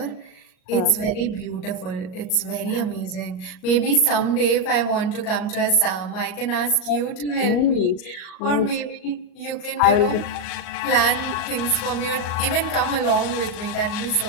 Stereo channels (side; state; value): right; late; 38 ms